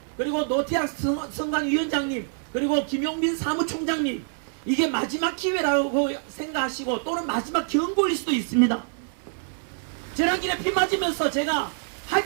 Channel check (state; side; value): silent; left; 61 dB below the other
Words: 그리고 노태학 선관위원장님, 그리고 김용민 사무총장님, 이게 마지막 기회라고 생각하시고 또는 마지막 경고일 수도 있습니다. 지난길에 피 맞으면서 제가 할